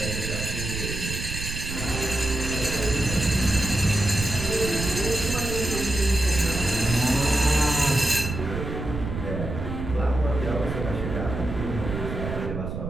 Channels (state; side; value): noise; right; rumble, 5 dB below the sound